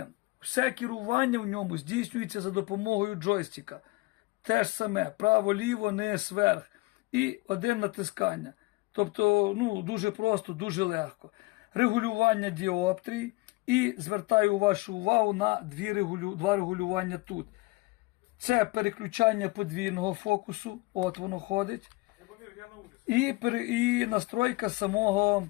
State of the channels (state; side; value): quieter; right; 23.3 dB